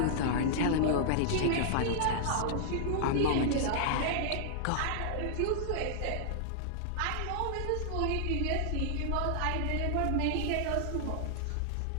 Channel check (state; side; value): different; both; correlation -0.01